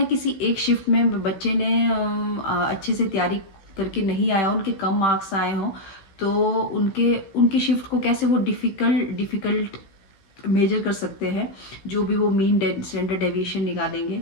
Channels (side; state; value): right; late; 16 ms